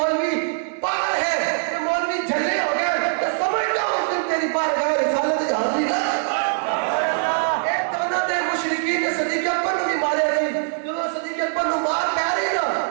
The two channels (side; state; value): left; silent; digital silence